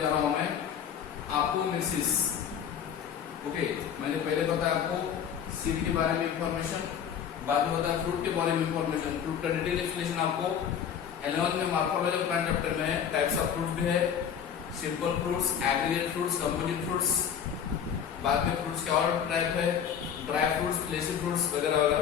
रहा हूं मैं, अपोमिक्सिस। ओके, मैंने पहले बताया आपको सीड के बारे में इंफॉर्मेशन, बाद में बताया फ्रूट के बारे में इंफॉर्मेशन। फ्रूट का डिटेल एक्सप्लेनेशन आपको 11th में मॉर्फोलॉजी ऑफ प्लांट चैप्टर में है। टाइप्स ऑफ फ्रूट्स भी है, simple fruits, aggregate fruits, composite fruits. बाद में फ्रूट्स के और टाइप है, ड्राई फ्रूट्स, फ्लेशी फ्रूट्स वगैरह वगैरह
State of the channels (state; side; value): quieter; right; 8.3 dB